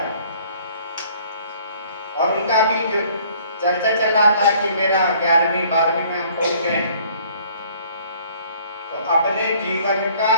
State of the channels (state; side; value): inverted; both; correlation -0.57